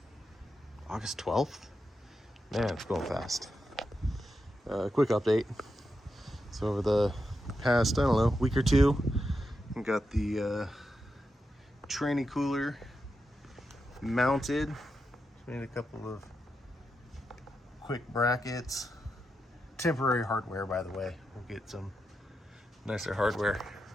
12th? Man, it's going fast. Quick update. So over the past, week or two, we got the tranny cooler mounted. Made a couple of quick brackets. Temporary hardware, by the way. We'll get some nicer hardware.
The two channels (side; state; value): both; normal; correlation 0.87